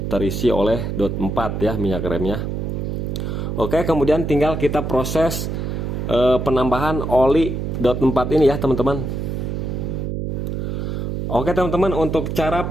terisi oleh dot 4 ya minyak remnya. Oke, kemudian tinggal kita proses penambahan oli dot 4 ini ya teman-teman. Oke teman-teman, untuk cara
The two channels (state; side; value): noise; right; hum, 3 dB below the sound